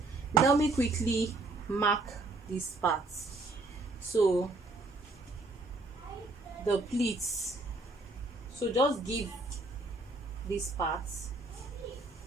let me quickly mark this part. So the pleats, so just give this part,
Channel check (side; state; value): left; quieter; 3.2 dB